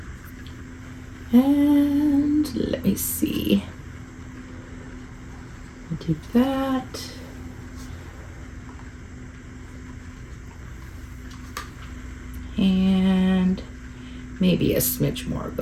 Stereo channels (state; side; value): identical; both; correlation 1.00